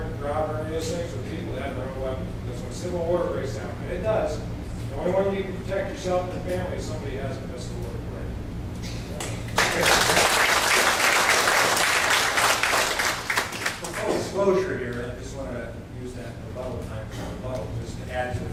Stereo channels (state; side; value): identical; both; correlation 1.00